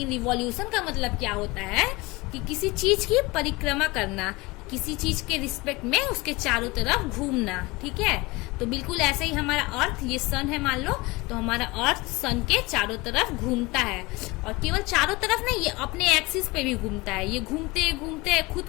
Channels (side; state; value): right; quieter; 23.3 dB